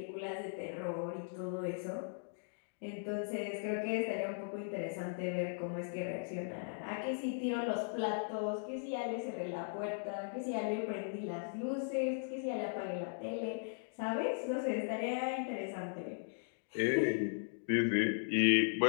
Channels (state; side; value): silent; right; digital silence